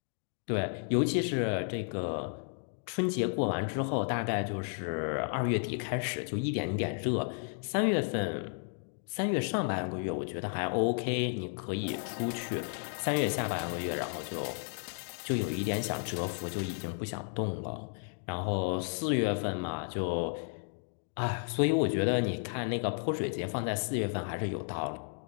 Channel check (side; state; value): right; silent; 56 dB below the other